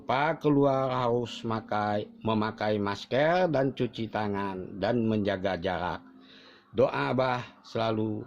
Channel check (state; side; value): identical; both; correlation 1.00